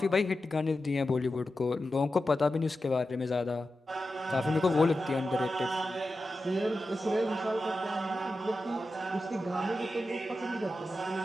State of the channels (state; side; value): normal; both; correlation 0.91